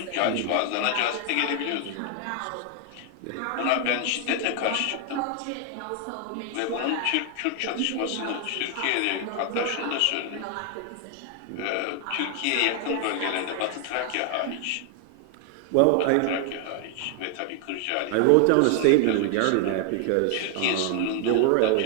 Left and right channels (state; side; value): different; both; correlation 0.00